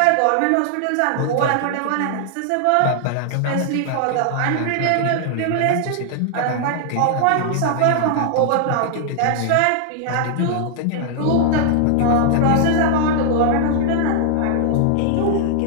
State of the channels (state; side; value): different; both; correlation -0.01